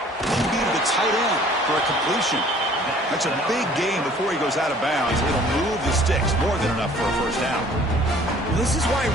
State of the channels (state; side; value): normal; both; correlation 0.53